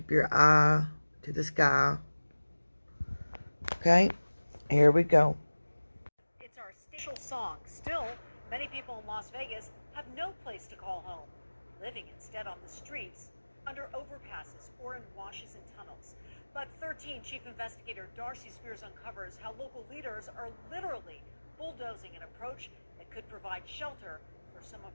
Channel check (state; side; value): inverted; both; correlation -1.00